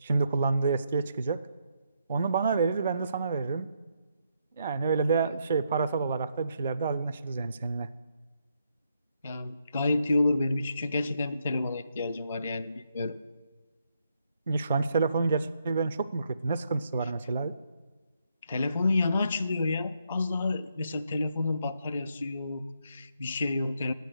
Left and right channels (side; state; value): both; inverted; correlation -0.76